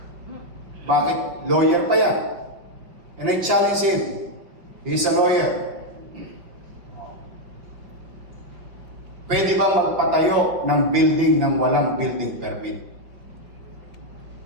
Bakit? Lawyer pa yan. And I challenge him. He's a lawyer. Pwede ba magpatayo ng building ng walang building permit?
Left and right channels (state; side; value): late; left; 5.8 ms